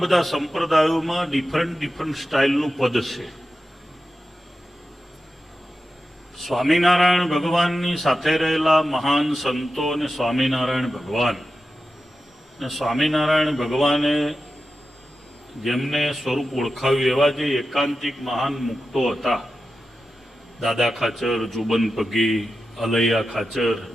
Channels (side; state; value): both; normal; correlation 0.92